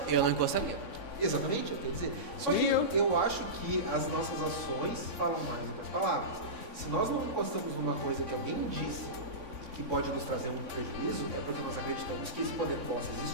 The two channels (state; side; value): late; left; 3.6 ms